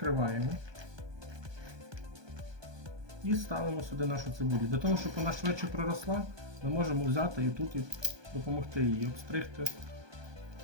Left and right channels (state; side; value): late; left; 1.2 ms